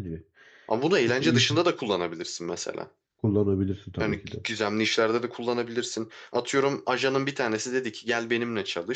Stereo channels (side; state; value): both; identical; correlation 1.00